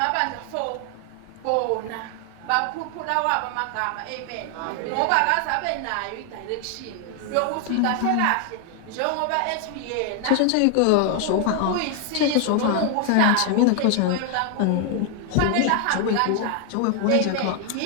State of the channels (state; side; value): different; both; correlation 0.00